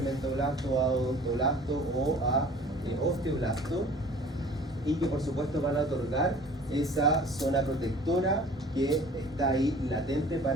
o a odontoblasto o a osteoblasto, y que por supuesto van a otorgar esa zona protectora que está ahí latente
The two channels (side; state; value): both; normal; correlation 0.48